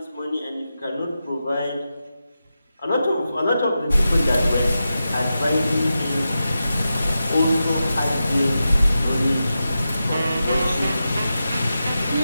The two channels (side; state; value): both; inverted; correlation -0.91